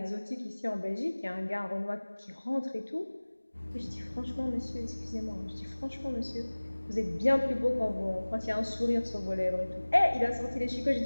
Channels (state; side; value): inverted; both; correlation -1.00